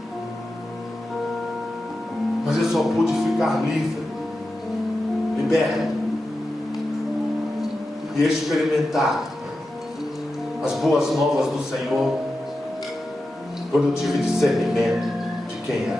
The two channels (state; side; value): normal; both; correlation 0.91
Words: Mas eu só pude ficar livre, liberto e experimentar as boas novas do Senhor quando eu tive discernimento de quem é